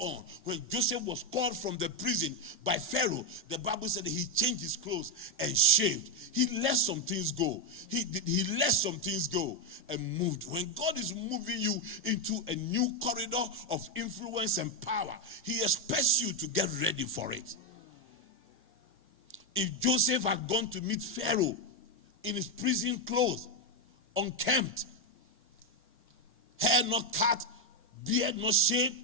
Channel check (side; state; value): both; normal; correlation 0.06